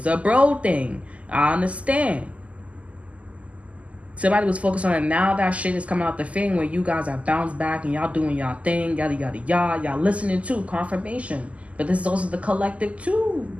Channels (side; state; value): left; late; 0.066 ms